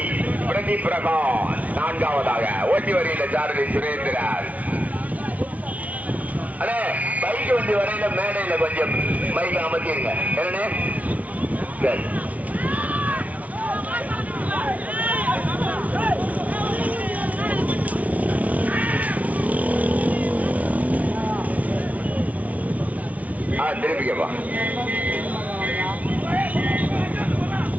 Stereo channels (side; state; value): left; late; 0.069 ms